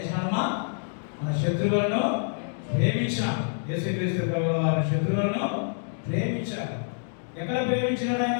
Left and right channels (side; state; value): right; silent; digital silence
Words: మన శత్రువులను ప్రేమించారు. యేసుక్రీస్తు ప్రభువు వారు శత్రువులను ప్రేమించారు. ఎక్కడ ప్రేమించినాడు